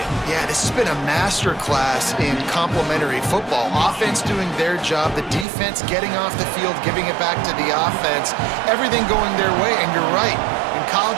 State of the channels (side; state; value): left; drops out; at 5.5 s